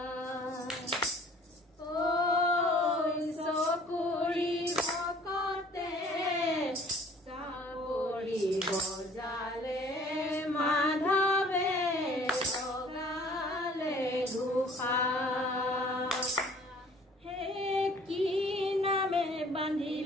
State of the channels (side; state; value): both; normal; correlation 0.54